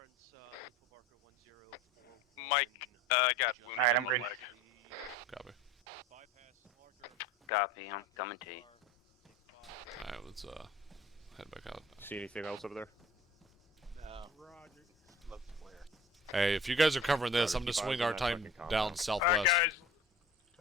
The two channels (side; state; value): both; normal; correlation 0.43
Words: info marker 1041. Mike, got wounded Alright, in I'm the green. leg. Copy. Bypass marker. Copy, I'm coming to you. Alright, let's head back out. See anything else over there? No. Roger. Looks clear. Hey, if you guys are covering this, Roger, I'm gonna keep swing eyes on our that time fucking compound. down Alright, southwest. guys.